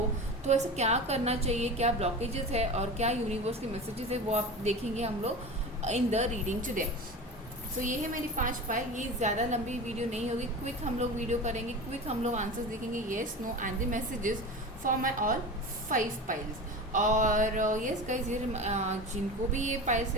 तो ऐसा क्या करना चाहिए, क्या ब्लॉकेजेस है और क्या यूनिवर्स के मैसेजेस है, वो आप देखेंगे हम लोग इन द रीडिंग टुडे। सो ये है मेरी 5 पाइल। ये ज़्यादा लंबी वीडियो नहीं होगी, क्विक हम लोग वीडियो करेंगे, क्विक हम लोग आंसर्स देखेंगे yes no and the messages for my all 5 piles. और येस गाइज, ये जिनको भी ये पाइल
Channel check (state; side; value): normal; both; correlation 0.30